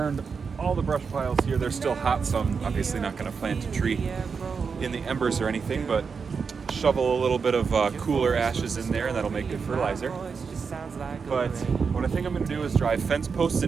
all the brush piles here. They're still hot, so I'm obviously not going to plant a tree in the embers or anything, but shovel a little bit of cooler ashes in there, and that'll make good fertilizer. But what I think I'm going to do is drive fence posts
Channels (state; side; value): quieter; left; 5.5 dB